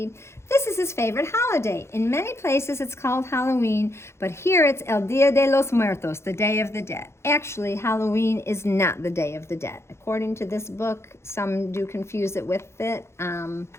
This is his favorite holiday. In many places it's called Halloween, but here it's El Dia de los Muertos, the Day of the Dead. Actually, Halloween is not the Day of the Dead. According to this book, some do confuse it with it,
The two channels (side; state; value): right; late; 0.13 ms